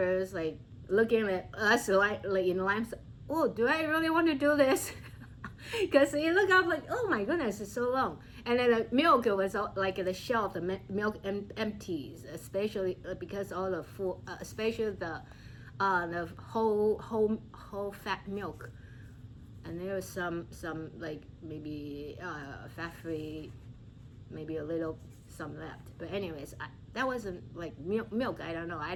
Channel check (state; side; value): identical; both; correlation 1.00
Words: looking at us like in line. Oh, do I really want to do this? Because you look up oh my goodness, it's so long. And then the milk was the shelf, the milk empties, especially because all the food, especially the whole fat milk. And there was some maybe fat free, maybe a little some left. But anyways, that wasn't milk. I don't know. I